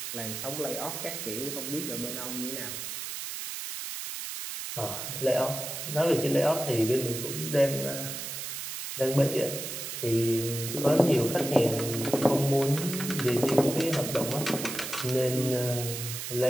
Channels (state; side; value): noise; right; hiss, 6 dB below the sound